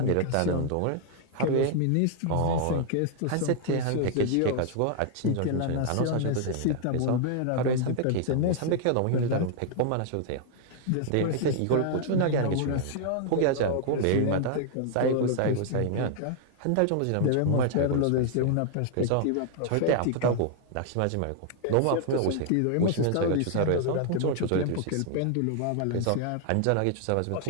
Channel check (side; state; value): both; different; correlation 0.00